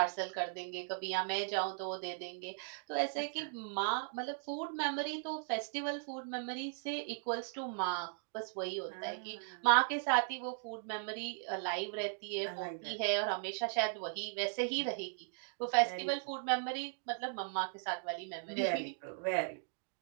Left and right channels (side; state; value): left; silent; digital silence